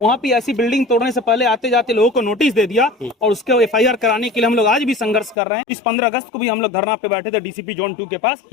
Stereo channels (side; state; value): right; drops out; at 5.4 s